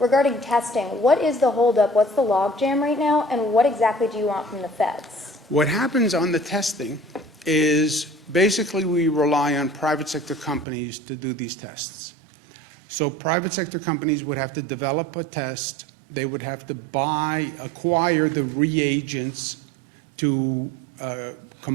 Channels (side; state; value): left; drops out; at 10.7 s